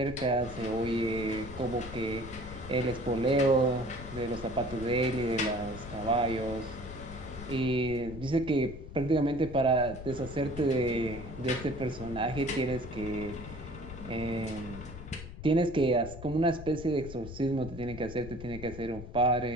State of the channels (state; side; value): noise; left; rumble, 12 dB below the sound